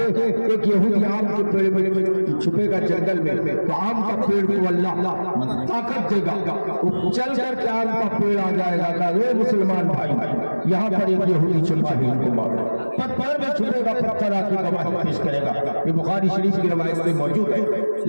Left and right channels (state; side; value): inverted; both; correlation -1.00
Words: ایک یہودی آم کے پیڑ میں چھپے گا جنگل میں، تو آم کا پیڑ کو اللہ طاقت دے گا، وہ چل کر کے آم کا پیڑ آ جائے گا کہ اے مسلمان بھائی یہاں پر ایک یہودی چھپا ہے، ان کو مارو۔ پتھر میں چھپے گا، پتھر آ کے گواہی پیش کرے گا۔ یہ بخاری شریف کی روایت میں موجود ہے،